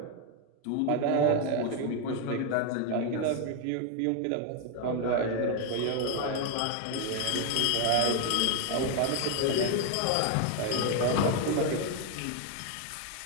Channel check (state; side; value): different; both; correlation 0.01